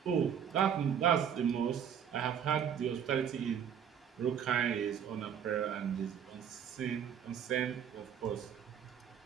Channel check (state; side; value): quieter; left; 8.4 dB